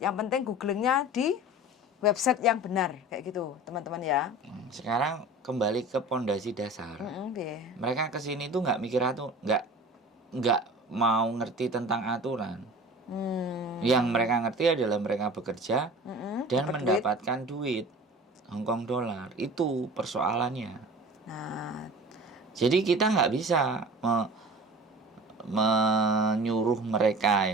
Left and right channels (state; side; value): normal; both; correlation 0.40